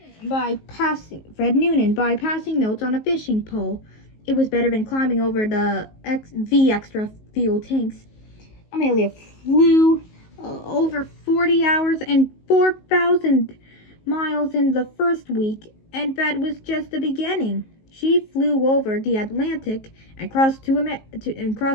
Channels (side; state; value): right; late; 19 ms